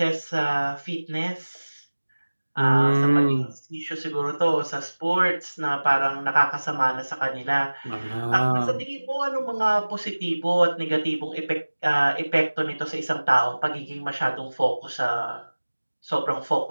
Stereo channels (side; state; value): both; inverted; correlation -1.00